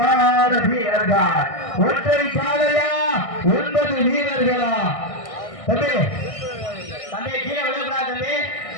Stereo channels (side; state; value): right; late; 1.6 ms